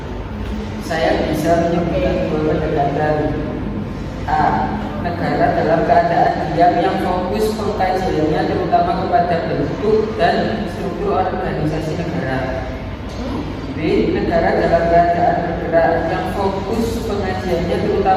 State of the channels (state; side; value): identical; both; correlation 1.00